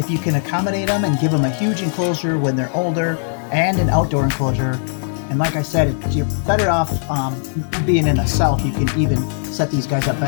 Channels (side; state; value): right; silent; digital silence